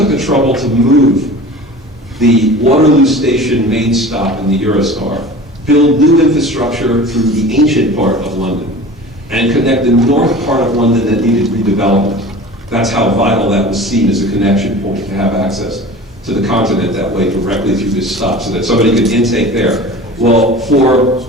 the trouble to move the Waterloo Station main stop in the Eurostar, build new infrastructure through the ancient part of London, and connect the north part of London that needed redevelopment. That's how vital that was seen as a connection point, to have access to the continent that way directly through this stop, so that somebody could intake there. Well, for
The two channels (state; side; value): normal; both; correlation 0.38